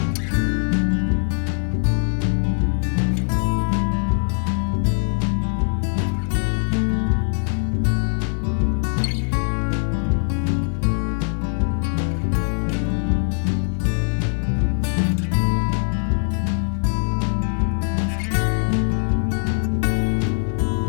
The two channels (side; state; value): right; silent; digital silence